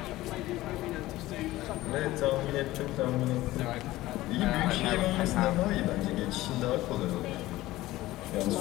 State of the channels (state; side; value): quieter; right; 17.1 dB